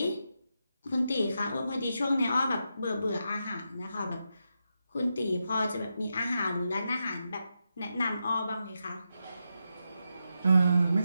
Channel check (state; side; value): inverted; both; correlation -0.86